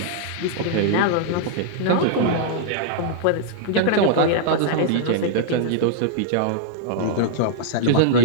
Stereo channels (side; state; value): both; different; correlation -0.01